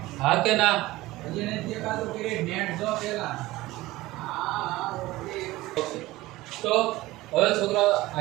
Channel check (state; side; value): quieter; left; 18.3 dB